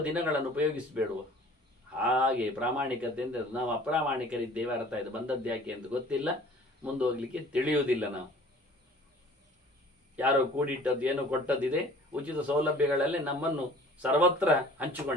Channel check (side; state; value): both; normal; correlation 0.49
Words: ದಿನಗಳನ್ನು ಉಪಯೋಗಿಸಬೇಡುವ. ಹಾಗೆ ಪ್ರಾಮಾಣಿಕತೆ ಅಂದರೆ ನಾವು ಅಪ್ರಾಮಾಣಿಕರಿದ್ದೇವೆ, ಅರ್ಥ ಇದು. ಬಂದದ್ದು ಯಾಕೆ ಅಂತ ಗೊತ್ತಿಲ್ಲ, ಮುಂದೆ ಹೋಗ್ಲಿಕ್ಕೆ ತಿಳಿಯುವುದಿಲ್ಲ. ನಾವು ಯಾರೋ ಕೂಡಿಟ್ಟದ್ದು ಏನೋ ಕೊಟ್ಟದ್ದಿದೆ, ಉಚಿತ ಸೌಲಭ್ಯಗಳಲ್ಲೇ ನಮ್ಮನ್ನು ಸರ್ವತ್ರ